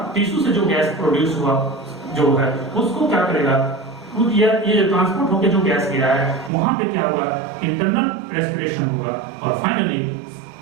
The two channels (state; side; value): drops out; left; at 6.5 s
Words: टिश्यू से जो गैस प्रोड्यूस हुआ जो है उसको क्या करेगा, ये ट्रांसपोर्ट होकर जो गैस गिरा है वहां पे क्या हुआ, इंटरनल रेस्पिरेशन होगा, और फाइनली